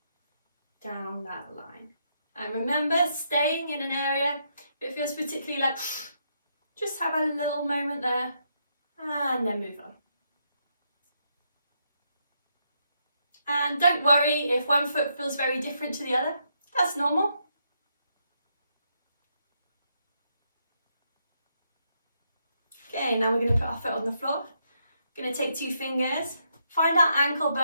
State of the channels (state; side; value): inverted; both; correlation -0.78